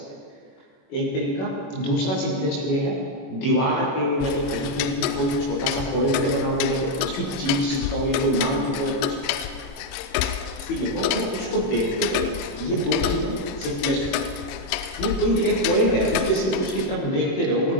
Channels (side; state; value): right; late; 21 ms